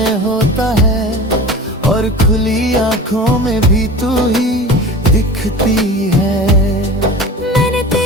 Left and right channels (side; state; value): both; normal; correlation 0.36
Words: होता है, और खुली आंखों में भी तू ही दिखती है। मैंने